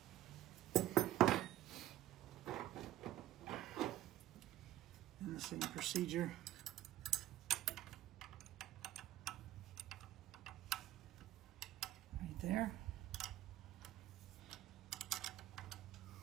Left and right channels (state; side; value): quieter; left; 13.9 dB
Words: And the same procedure. Right there.